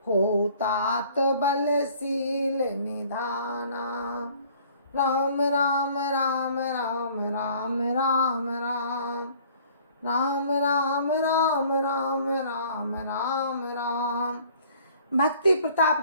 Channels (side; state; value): both; inverted; correlation -0.55